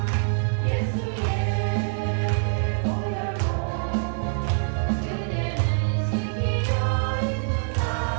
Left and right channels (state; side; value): silent; left; digital silence